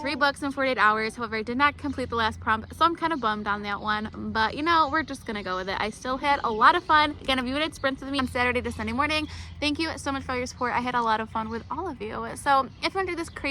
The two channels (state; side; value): identical; both; correlation 1.00